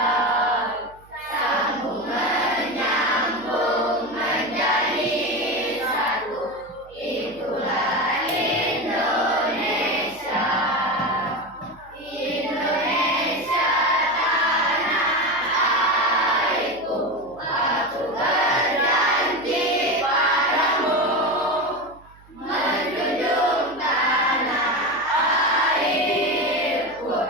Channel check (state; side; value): noise; right; hum, 26 dB below the sound